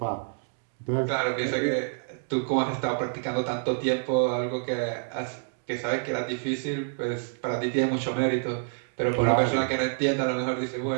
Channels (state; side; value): silent; left; digital silence